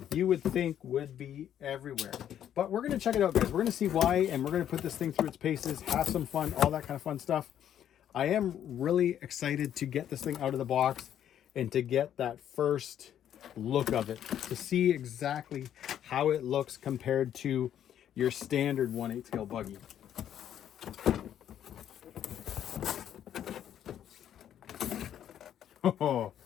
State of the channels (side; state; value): right; quieter; 10.3 dB